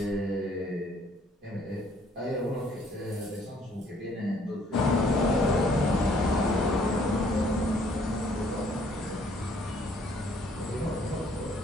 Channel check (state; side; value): normal; both; correlation 0.62